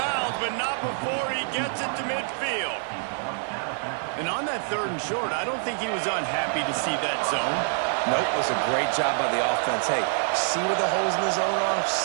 but not before he gets it to midfield. And on that 3rd and short, I don't think he was unhappy to see that zone. Nope, it was a great job by the offense. Hey, see where the holes in the zone are?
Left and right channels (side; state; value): left; silent; 61 dB below the other